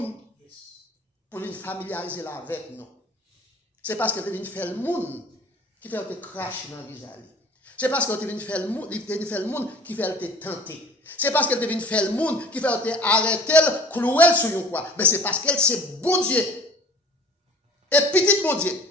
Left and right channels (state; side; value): normal; both; correlation 0.47